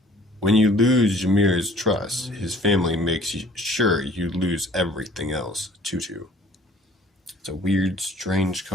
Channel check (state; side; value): normal; both; correlation 0.53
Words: When you lose Jamir's trust, his family makes sure you lose everything else. 2/2. It's a weird, strange